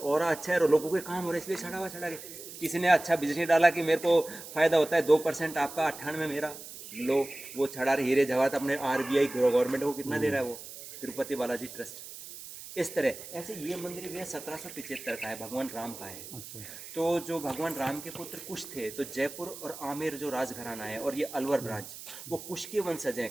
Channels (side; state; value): right; noise; hiss, 13 dB below the sound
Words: ऑरा अच्छा है और लोगों के काम हो रहे हैं, इसलिए चढ़ावा चढ़ा के। किसी ने अच्छा बिजनेस डाला कि मेरे को फायदा होता है, 2% आपका, 98 मेरा, लो वो चढ़ा रहे हीरे जवाहरात। अपने RBI गवर्नमेंट को कितना दे रहा है वो, तिरुपति बालाजी ट्रस्ट। इस तरह ऐसे ये मंदिर भी है 1775 का है, भगवान राम का है। अच्छा। तो जो भगवान राम के पुत्र कुश थे, तो जयपुर और आमेर जो राजघराना है और ये अलवर ब्रांच, वो कुश के वंशज हैं,